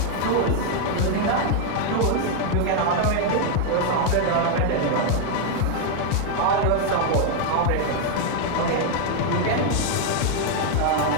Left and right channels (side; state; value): both; different; correlation 0.00